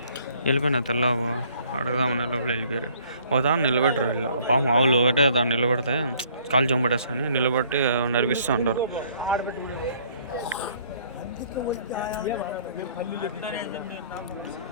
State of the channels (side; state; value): both; inverted; correlation -0.60